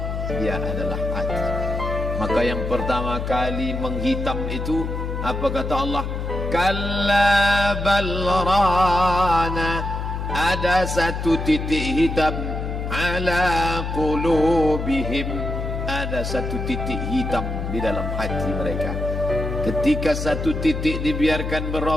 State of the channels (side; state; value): left; noise; hum, 4 dB below the sound